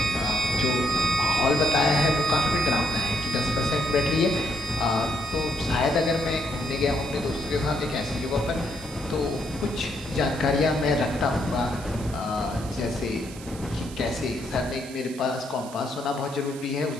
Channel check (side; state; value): right; noise; hiss, 17 dB below the sound